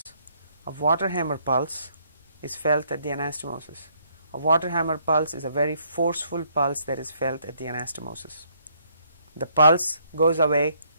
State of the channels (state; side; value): inverted; both; correlation -0.68